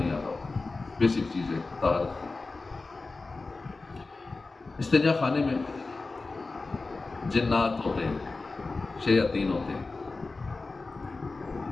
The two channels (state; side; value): quieter; right; 3.7 dB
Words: آتا ہوتا۔ بیسک چیز ہے طہارت کی۔ استنجا خانے میں جنات ہوتے ہیں، شیاطین ہوتے ہیں،